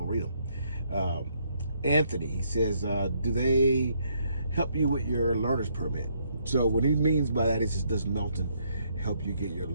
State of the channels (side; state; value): both; inverted; correlation -0.71